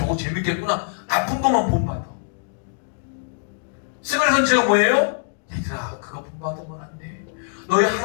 재밌겠구나. 나쁜 것만 본받아. 스가랴 선지자가 뭐예요? 얘들아 그거 본받으면 안 돼. 너희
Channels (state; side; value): silent; right; digital silence